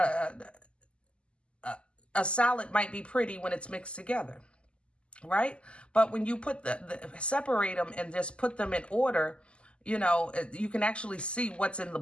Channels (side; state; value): right; late; 0.053 ms